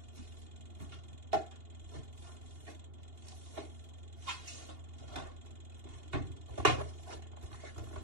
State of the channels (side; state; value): left; late; 2.8 ms